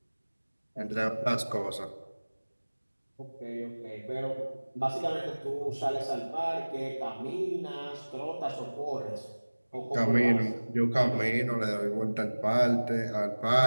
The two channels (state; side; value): inverted; both; correlation -1.00